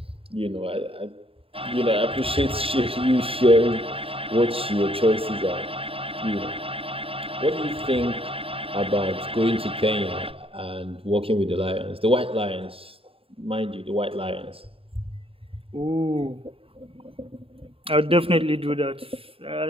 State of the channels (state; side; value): late; left; 0.27 ms